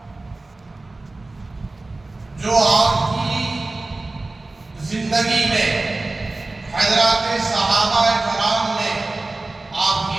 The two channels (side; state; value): left; quieter; 3.1 dB